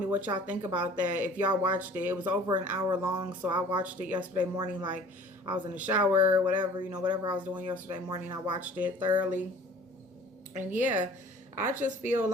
what y'all think about that. If y'all watched it, it was over an hour long. So I watched it yesterday morning, like I was in the shower, whatever, whatever I was doing yesterday morning, I watched it thoroughly. And yeah, I just feel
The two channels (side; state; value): both; normal; correlation 0.48